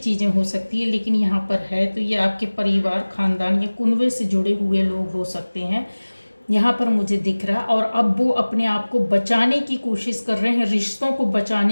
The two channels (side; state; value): both; inverted; correlation -1.00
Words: हो सकती है। लेकिन यहाँ पर है तो ये आपके परिवार, खानदान या कुनबे से जुड़े हुए लोग हो सकते हैं, यहाँ पर मुझे दिख रहा। और अब वो अपने आप को बचाने की कोशिश कर रहे हैं, रिश्तों को